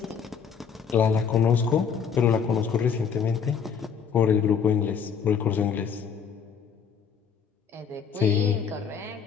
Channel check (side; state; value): right; quieter; 6.8 dB